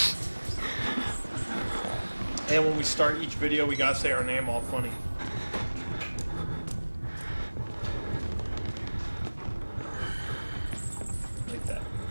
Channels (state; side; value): inverted; both; correlation -1.00